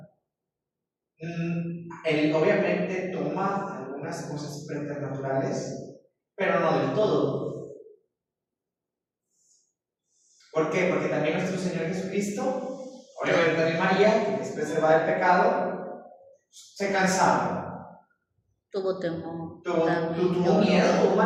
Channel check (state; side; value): identical; both; correlation 1.00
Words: Él obviamente toma algunas cosas preternaturales, pero no del todo. ¿Por qué? Porque también nuestro Señor Jesucristo, obviamente también María, que es preservada del pecado, se cansaba. Tuvo temor. Tuvo miedo,